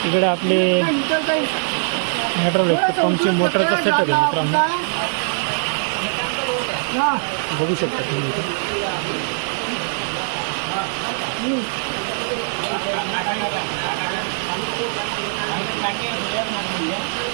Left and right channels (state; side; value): silent; left; digital silence